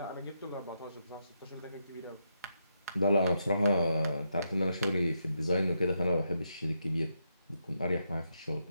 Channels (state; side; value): inverted; both; correlation -0.82